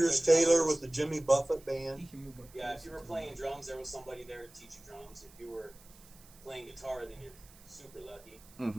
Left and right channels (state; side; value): noise; right; hiss, 24 dB below the sound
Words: Taylor with the Jimmy Buffett band. He can move up Yeah, if closer you were to playing me. drums, there was somebody there to teach you drums. If you were playing guitar, then you're super lucky.